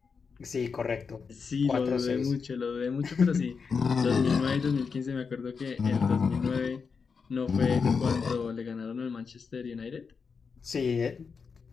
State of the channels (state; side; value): quieter; right; 5.5 dB